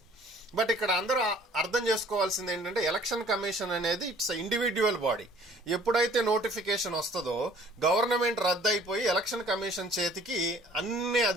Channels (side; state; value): both; normal; correlation 0.55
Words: బట్ ఇక్కడ అందరూ అర్థం చేసుకోవాల్సింది ఏంటంటే ఎలక్షన్ కమిషన్ అనేది ఇట్స్ ఇండివిడ్యువల్ బాడీ. ఎప్పుడైతే నోటిఫికేషన్ వస్తుందో గవర్నమెంట్ రద్దయిపోయి ఎలక్షన్ కమిషన్ చేతికి అన్ని